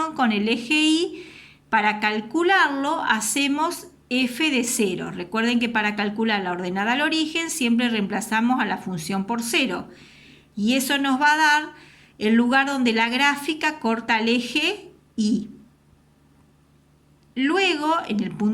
con el eje Y. Para calcularlo, hacemos f de 0. Recuerden que para calcular la ordenada al origen siempre reemplazamos a la función por 0. Y eso nos va a dar el lugar donde la gráfica corta el eje Y. Luego, en el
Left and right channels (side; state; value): both; identical; correlation 1.00